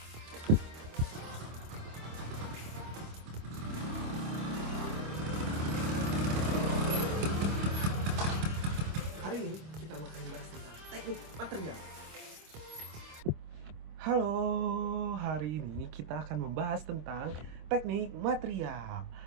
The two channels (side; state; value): left; late; 26 ms